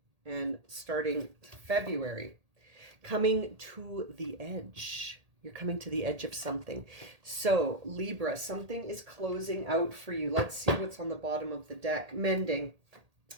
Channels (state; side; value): late; left; 1.8 ms